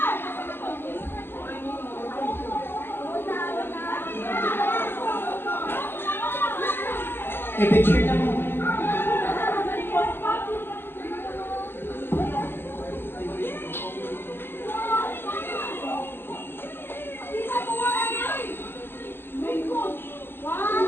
Ay, picture na mo.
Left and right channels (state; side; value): late; right; 0.10 ms